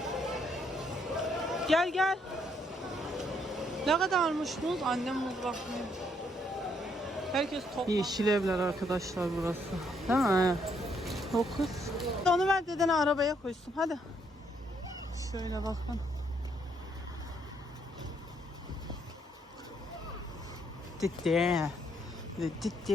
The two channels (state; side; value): normal; both; correlation 0.72